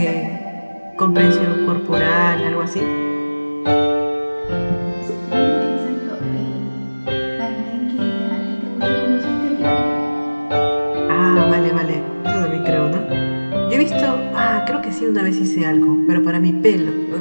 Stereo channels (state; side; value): inverted; both; correlation -1.00